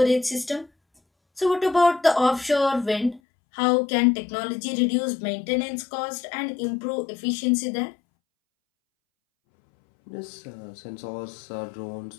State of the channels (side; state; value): right; drops out; at 3.2 s